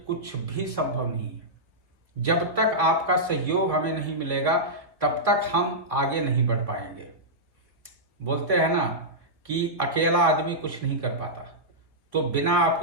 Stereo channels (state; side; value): late; left; 1.9 ms